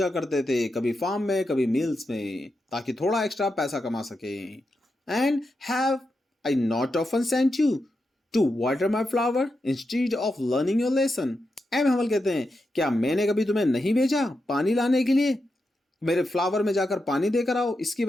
करते थे, कभी फार्म में कभी मिल्स में, ताकि थोड़ा एक्स्ट्रा पैसा कमा सके। And have I not often sent you to water my flower instead of learning your lesson, M Hamel कहते हैं, क्या मैंने कभी तुम्हें नहीं भेजा पानी लाने के लिए, मेरे फ्लावर में जाकर पानी देकर आओ, इसकी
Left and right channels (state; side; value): normal; both; correlation 0.87